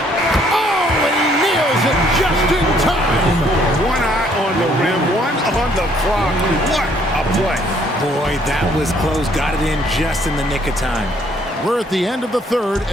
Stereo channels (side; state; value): both; normal; correlation 0.65